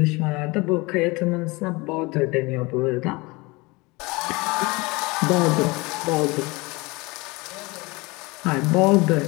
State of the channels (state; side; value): quieter; right; 24.7 dB